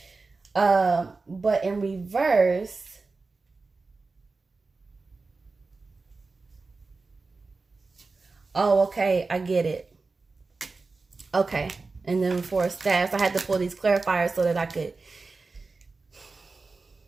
But in reverse, oh, okay, I get it. Okay, and then for Staffs, I had to pull these clarifiers so that I could.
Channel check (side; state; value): left; quieter; 3.9 dB